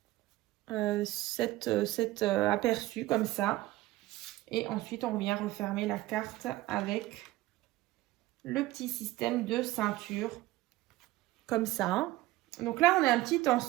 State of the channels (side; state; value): left; quieter; 17.4 dB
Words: aperçus comme ça. Et ensuite, on vient refermer la carte avec le petit système de ceinture comme ça. Donc là, on a un petit